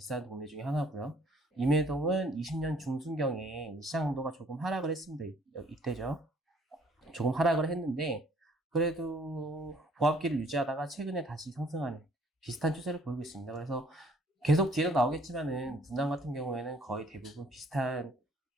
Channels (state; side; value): normal; both; correlation 0.60